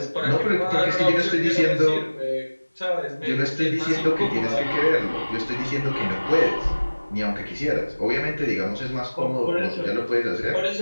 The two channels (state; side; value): inverted; both; correlation -1.00